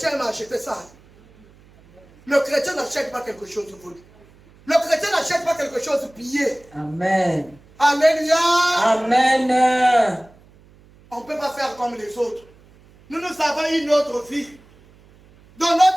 m'ont acheté ça. Le chrétien n'achète pas quelque chose de volé. Le chrétien n'achète pas quelque chose de pillé. Amen. Alléluia. Amen. On ne peut pas faire comme les autres. Nous avons une autre vie. Dans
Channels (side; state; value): right; noise; hum, 27 dB below the sound